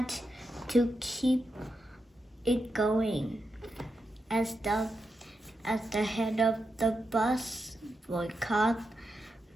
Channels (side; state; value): both; normal; correlation 0.86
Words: to keep it going. As the head of the bus boycott,